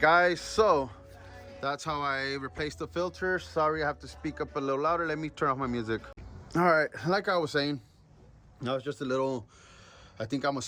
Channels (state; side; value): identical; both; correlation 1.00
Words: so That's how I replaced the filter. Sorry, I have to speak up a little louder. Let me turn off my music. All right, like I was saying, that was just a little, I think I'm gonna